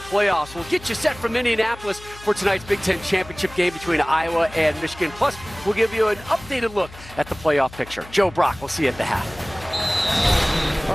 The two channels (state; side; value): noise; left; hum, 18 dB below the sound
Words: We'll get you set from Indianapolis for tonight's Big Ten championship game between Iowa and Michigan. Plus, we'll give you an updated look at the playoff picture. Joe Brock, we'll see you at the half. All